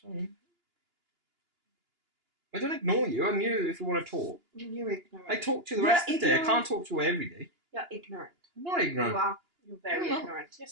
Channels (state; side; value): late; left; 2.9 ms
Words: Sorry. I don't ignore you. I'm you if you want to talk. You're ignorant. I talk to you the rest of the day. I can't talk to you every day. You're ignorant. I'm not ignorant. You are. You're very ignorant.